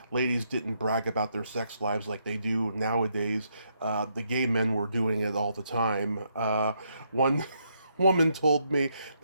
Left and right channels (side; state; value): both; inverted; correlation -0.76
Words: ladies didn't brag about their sex lives like they do nowadays, the gay men were doing it all the time. One woman told me